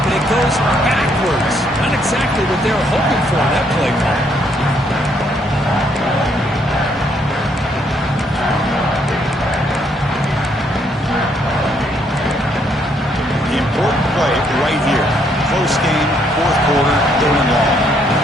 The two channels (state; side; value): normal; both; correlation 0.71